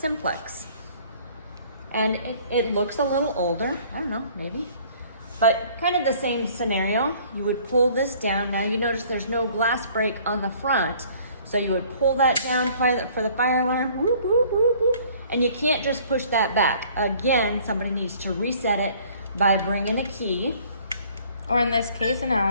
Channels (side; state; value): both; inverted; correlation -0.55